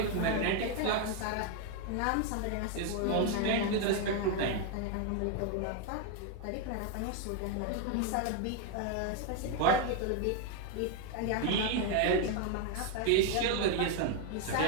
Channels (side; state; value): both; different; correlation 0.01